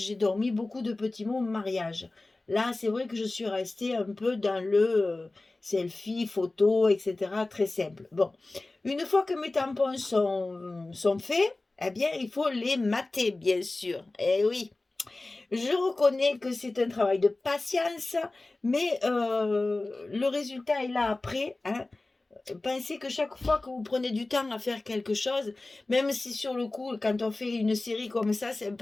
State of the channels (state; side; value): quieter; right; 3.0 dB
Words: dormi beaucoup de petits mots mariage. Là, c'est vrai que je suis restée un peu dans le selfie, photo, etc. Très simple. Bon, une fois que mes tampons sont faits, eh bien, il faut les mater, bien sûr. Eh oui, je reconnais que c'est un travail de patience, mais le résultat est là après. Hein. Pensez que chaque fois que vous prenez du temps à faire quelque chose, même si sur le coup, quand on fait une série comme ça, c'est un